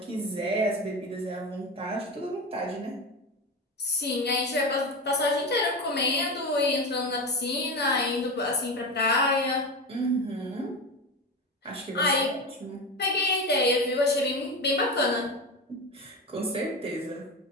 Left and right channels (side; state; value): both; normal; correlation 0.21